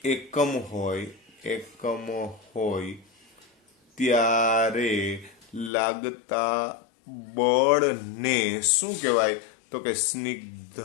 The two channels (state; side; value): drops out; right; at 5.7 s